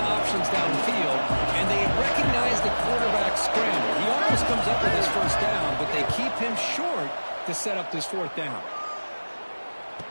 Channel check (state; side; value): inverted; both; correlation -1.00